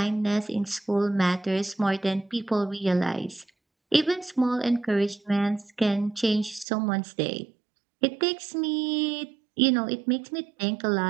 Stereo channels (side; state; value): left; drops out; at 6.7 s